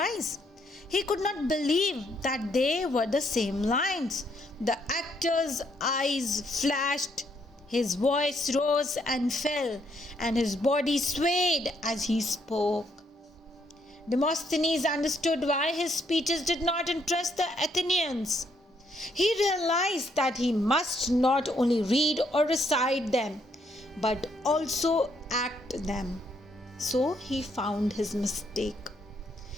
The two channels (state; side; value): normal; both; correlation 0.72